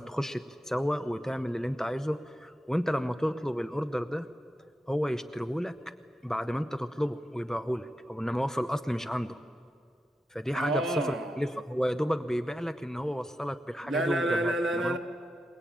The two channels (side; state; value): both; normal; correlation 0.89